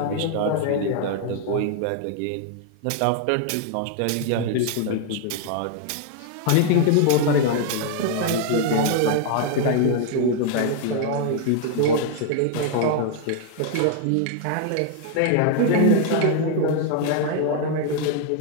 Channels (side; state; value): both; different; correlation 0.00